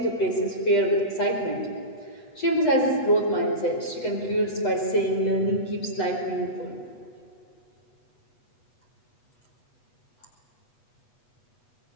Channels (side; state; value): right; late; 7.9 ms